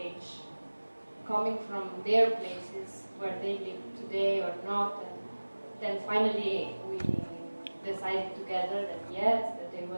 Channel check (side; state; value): both; inverted; correlation -1.00